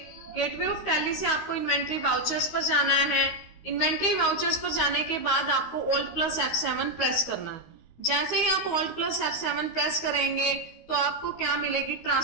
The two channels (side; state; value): right; late; 13 ms